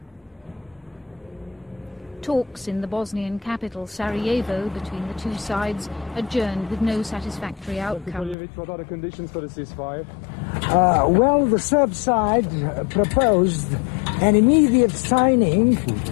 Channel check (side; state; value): right; drops out; at 8.3 s